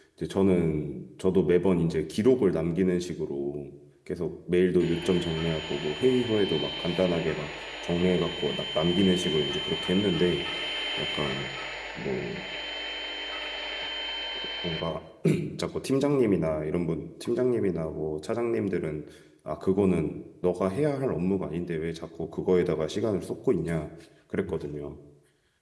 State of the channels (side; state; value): both; identical; correlation 1.00